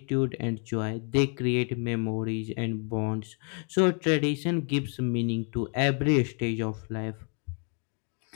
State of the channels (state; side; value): quieter; right; 39.3 dB